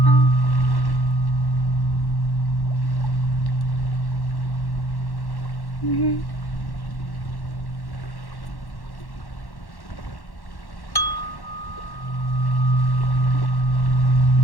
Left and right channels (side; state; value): right; late; 1.1 ms